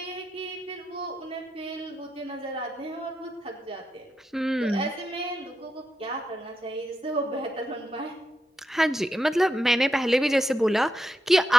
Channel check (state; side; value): normal; both; correlation 0.85